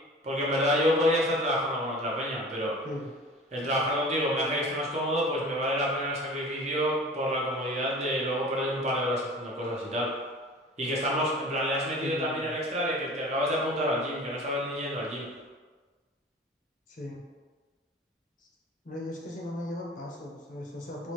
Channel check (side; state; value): both; normal; correlation 0.41